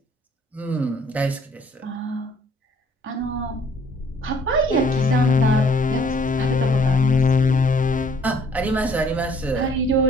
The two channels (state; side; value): normal; both; correlation 0.60